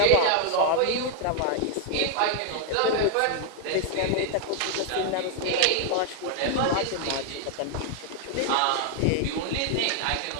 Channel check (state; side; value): different; both; correlation 0.00